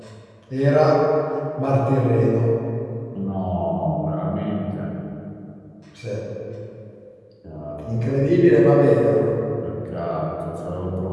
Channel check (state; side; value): identical; both; correlation 1.00